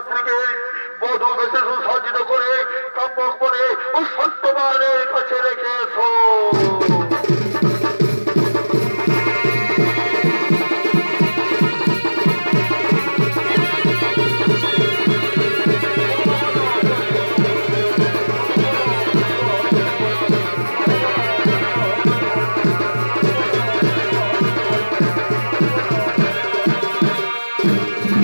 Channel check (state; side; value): inverted; both; correlation -1.00